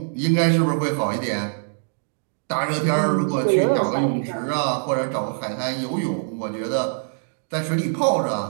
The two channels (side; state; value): left; silent; digital silence